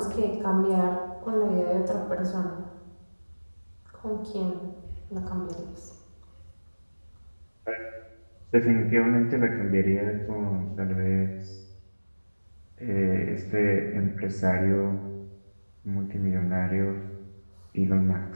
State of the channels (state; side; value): inverted; both; correlation -1.00